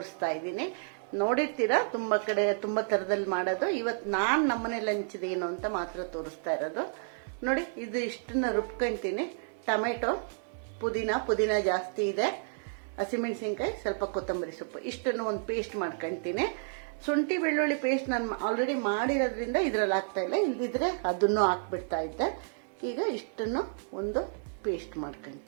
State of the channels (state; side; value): silent; left; digital silence